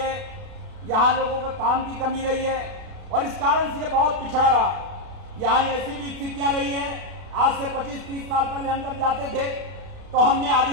यहाँ लोगों के काम की कमी रही है और इस कारण से ये बहुत पिछड़ा रहा। यहाँ ऐसी भी स्थितियां रही हैं। आज से 25-30 साल पहले हम जब जाते थे तो हमने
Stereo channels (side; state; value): left; late; 32 ms